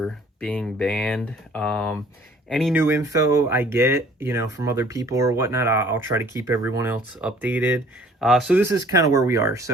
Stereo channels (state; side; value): normal; both; correlation 0.55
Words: being banned. Any new info I get, from other people or whatnot, I'll try to keep everyone else updated. So this is kind of where we are.